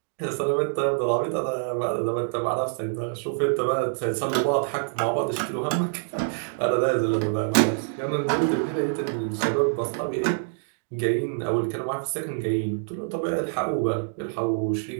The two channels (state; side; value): silent; left; digital silence